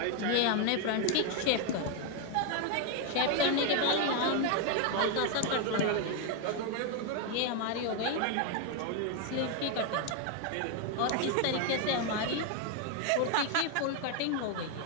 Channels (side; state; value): both; different; correlation 0.01